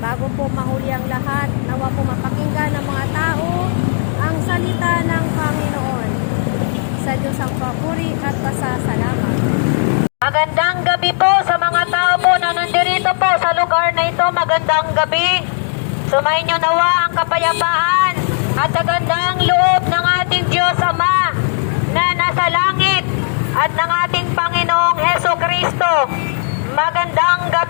po mahuli ang lahat, nawa po mapakinggan ng mga tao ang salita ng Panginoon. Sa Diyos ang papuri at pasasalamat. Magandang gabi po sa mga tao po na nandirito po sa lugar na ito. Magandang gabi. Sumayin nyo nawa ang kapayapaan at kagandang loob ng ating Diyos Ama na nasa langit at ng ating Panginoong Heso Kristo. Magandang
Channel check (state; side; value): silent; right; digital silence